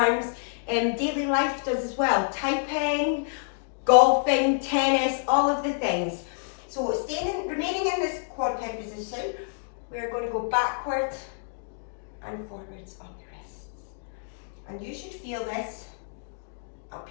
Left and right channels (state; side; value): silent; right; digital silence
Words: daily life does as well. Typing, golfing, tennis, all of the things. So remaining in this quad peg position, we're going to go backwards and forwards on the wrists. And you should feel this